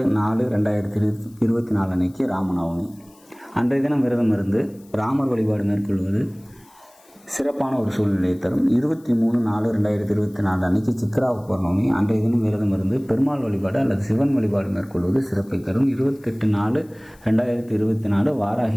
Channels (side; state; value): left; noise; hiss, 29 dB below the sound